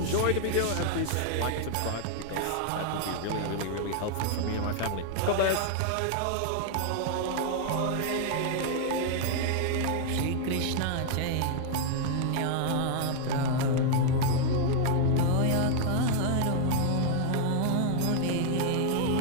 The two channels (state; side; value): different; both; correlation 0.00